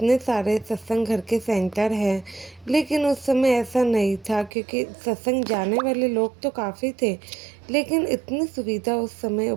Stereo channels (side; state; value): left; drops out; at 4.5 s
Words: सारे सत्संग घर के सेंटर हैं, लेकिन उस समय ऐसा नहीं था, क्योंकि सत्संग जाने वाले लोग तो काफ़ी थे, लेकिन इतनी सुविधा उस समय